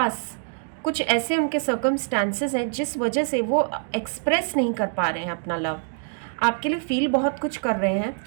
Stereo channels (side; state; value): left; silent; digital silence